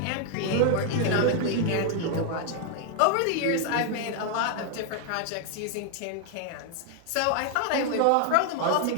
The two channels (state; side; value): different; both; correlation 0.00